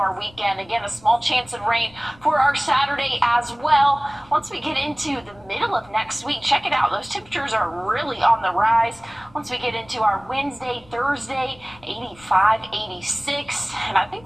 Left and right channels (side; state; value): left; noise; rumble, 26 dB below the sound